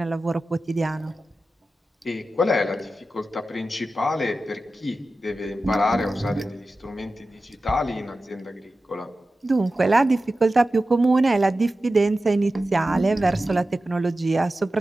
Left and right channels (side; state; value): both; normal; correlation 0.94